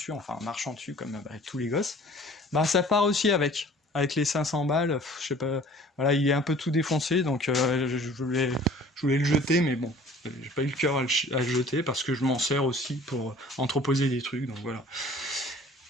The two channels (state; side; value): normal; both; correlation 0.50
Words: enfin en marchant dessus comme avec tous les gosses. Bah ça part aussi avec les 500 balles, je sais pas, voilà, il est un peu tout défoncé, donc je voulais le jeter, mais bon, j'ai pas eu le cœur à le jeter parce que je m'en sers aussi pour entreposer des trucs, donc voilà.